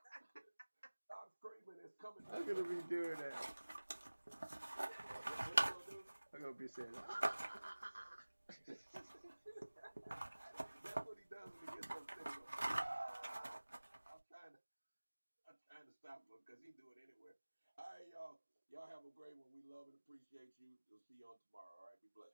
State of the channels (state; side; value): inverted; both; correlation -1.00